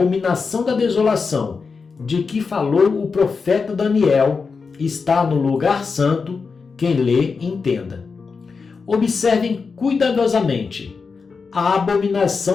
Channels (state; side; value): quieter; right; 5.0 dB